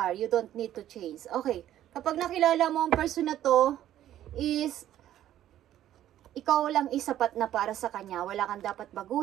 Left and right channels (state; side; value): quieter; left; 12.2 dB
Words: You don't need to change. Okay, kapag nakilala mo ang person na to, is ikaw lang isapat na para sa kanya. Wala kang dapat